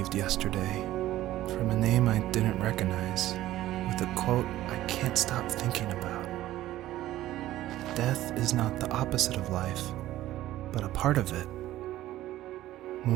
yesterday from a name I didn't recognize, with a quote I can't stop thinking about. Death is not the opposite of life, but a part of it.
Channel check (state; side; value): quieter; left; 14.7 dB